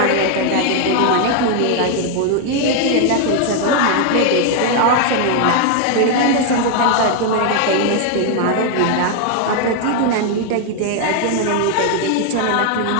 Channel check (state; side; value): different; both; correlation 0.00